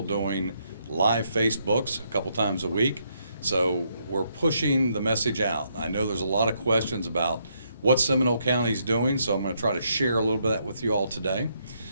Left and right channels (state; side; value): inverted; both; correlation -0.75